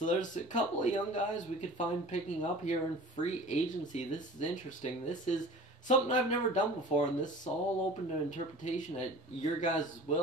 there's a couple of young guys we could find picking up here in free agency. This is interesting. This is something I've never done before, and this is all open to interpretation at your guys'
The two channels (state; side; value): normal; both; correlation 0.42